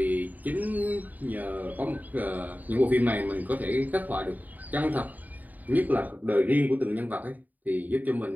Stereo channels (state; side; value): late; left; 0.081 ms